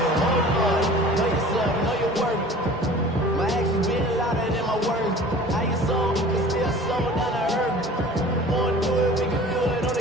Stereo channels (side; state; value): both; normal; correlation 0.44